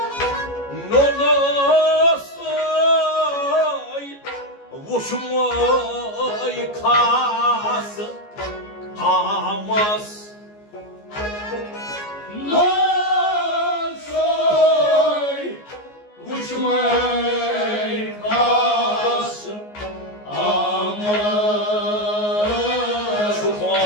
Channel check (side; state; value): right; late; 14 ms